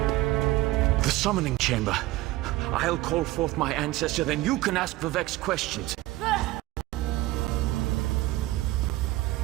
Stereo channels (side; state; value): left; quieter; 17.9 dB